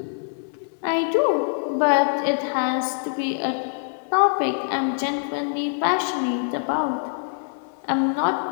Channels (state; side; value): silent; right; 63 dB below the other